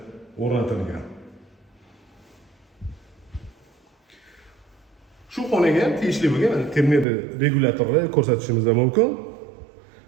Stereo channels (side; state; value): left; drops out; at 7.1 s